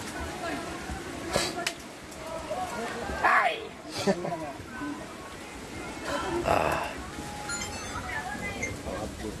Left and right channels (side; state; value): both; identical; correlation 1.00